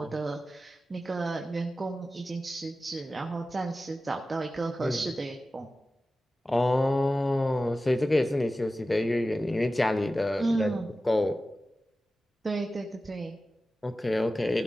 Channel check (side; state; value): both; normal; correlation 0.95